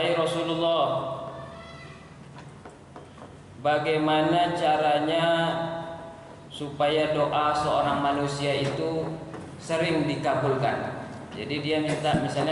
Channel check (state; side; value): identical; both; correlation 1.00